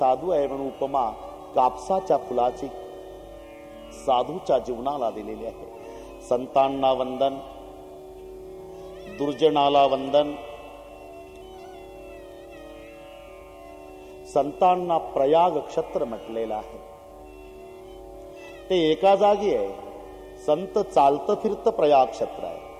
आहे म्हणून उपमा कापसाच्या फुलाची साधूच्या जीवनाला दिलेली आहे. संतांना वंदन, दुर्जनाला वंदन. संतांना प्रयाग क्षत्र म्हटलेलं आहे. ते एका जागी आहे. संत चालतं फिरतं प्रयाग क्षेत्र आहे.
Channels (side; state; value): both; identical; correlation 1.00